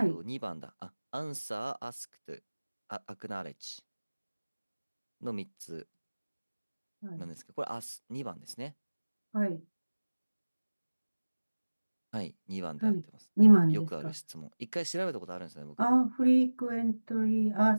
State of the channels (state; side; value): inverted; both; correlation -1.00